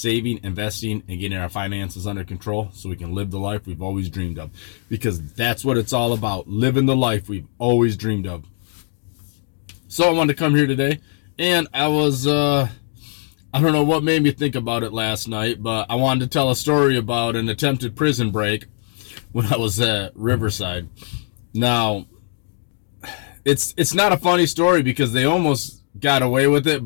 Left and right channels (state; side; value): silent; right; digital silence